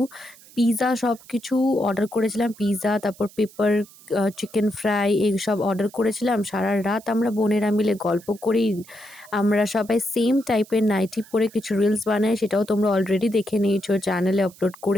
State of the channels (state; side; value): noise; right; hiss, 23 dB below the sound